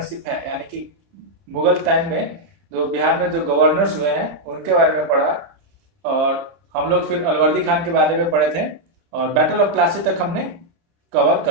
है यानी कि मुगल टाइम में जो बिहार में जो गवर्नर्स हुए हैं उनके बारे में पढ़ा और हम लोग फिर अलवर्दी खान के बारे में पढ़े थे और बैटल ऑफ प्लासी तक हमने कवर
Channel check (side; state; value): left; late; 30 ms